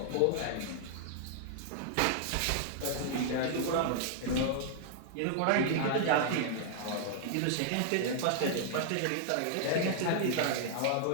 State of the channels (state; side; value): different; both; correlation -0.01